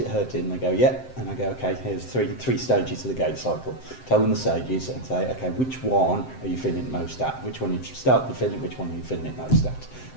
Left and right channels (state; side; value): late; right; 7.7 ms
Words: hurting? And they go, yeah. And I go, okay, here's three stages of the gait cycle. Tell them the stages and say, okay, which one are you feeling it most at? Which one you start to feeling, which one are you feeling it most at?